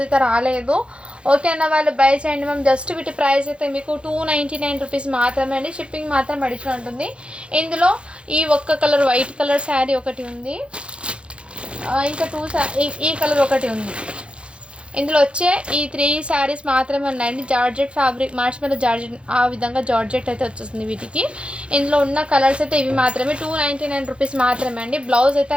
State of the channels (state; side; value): late; left; 0.058 ms